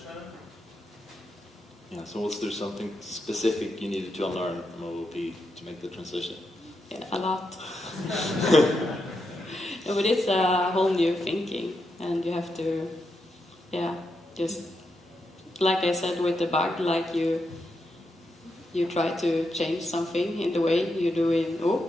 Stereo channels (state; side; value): normal; both; correlation 0.84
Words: Yeah, so was there something specific you needed to unlearn from OOP to make the transition? Yeah, a lot. No, but it's a whole new thinking, and you have to, just like I said with the bug, like you try to change something in the way you do in OOP,